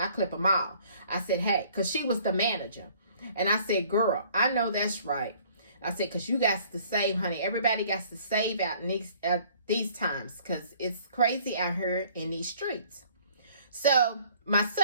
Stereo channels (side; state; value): both; inverted; correlation -0.56